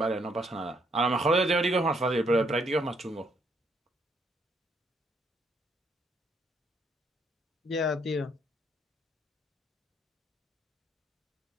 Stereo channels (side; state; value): both; normal; correlation 0.71